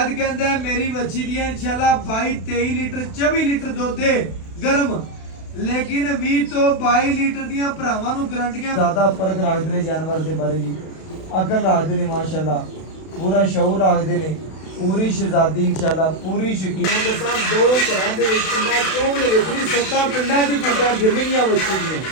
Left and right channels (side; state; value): right; late; 32 ms